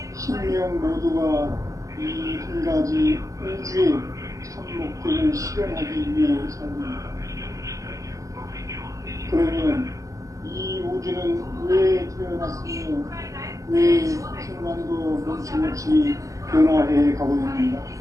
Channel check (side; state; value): left; late; 0.16 ms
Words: 신명 모두가 이 한 가지 우주의 참 목적을 실현하기 위해 삽니다. 그러면 이 우주는 왜 태어났으며 왜 순간도 멈춤없이 변화해 가고 있는가?